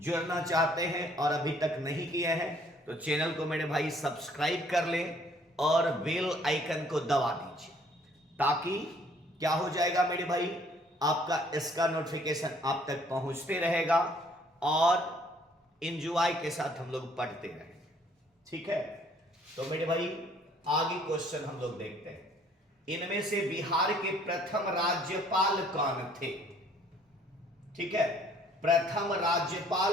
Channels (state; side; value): normal; both; correlation 0.60